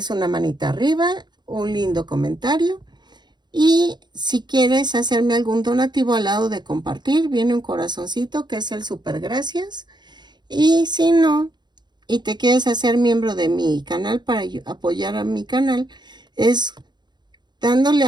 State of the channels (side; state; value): left; late; 0.21 ms